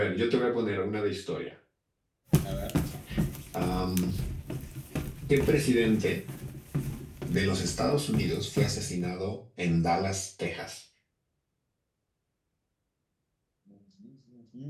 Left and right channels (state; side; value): identical; both; correlation 1.00